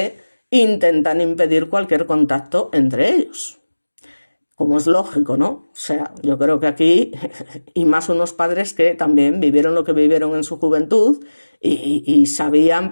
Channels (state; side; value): inverted; both; correlation -1.00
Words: intentan impedir cualquier contacto entre ellos. Como es lógico, ¿no? O sea, yo creo que aquí, y más unos padres que también vivieron lo que vivieron en su juventud y sabían